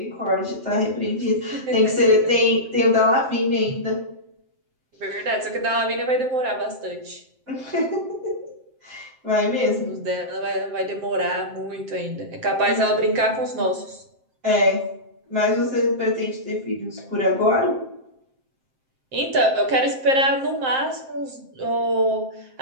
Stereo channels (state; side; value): late; left; 7.6 ms